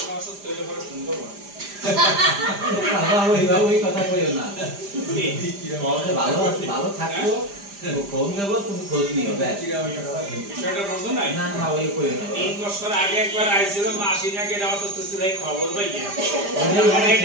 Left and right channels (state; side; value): late; left; 5.0 ms